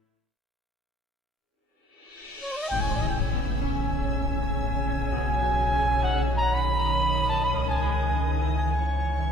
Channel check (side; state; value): both; normal; correlation 0.60